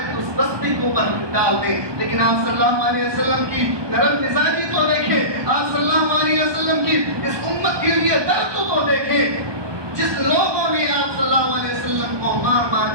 اس بستی کو اوپر ڈال دیں. لیکن آپ صلی اللہ علیہ وسلم کی نرم مزاجی تو دیکھیں, آپ صلی اللہ علیہ وسلم کی اس امت کے لیے درد تو دیکھیں. جس لوگوں نے آپ صلی اللہ علیہ وسلم کو مار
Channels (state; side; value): late; left; 1.2 ms